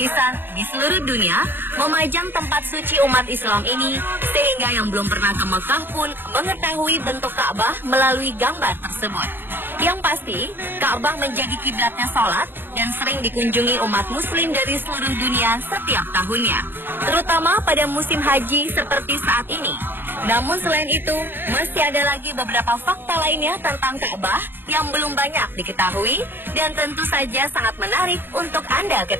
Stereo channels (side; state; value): left; late; 0.099 ms